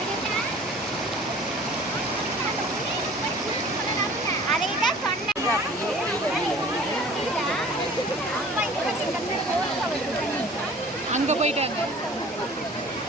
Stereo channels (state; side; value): normal; both; correlation 0.47